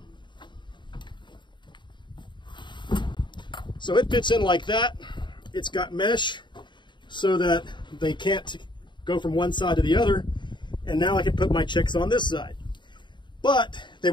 So it fits in like that. It's got mesh so that they can't go from one side to the other. And now I can put my chicks on this side. But they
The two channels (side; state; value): right; late; 0.23 ms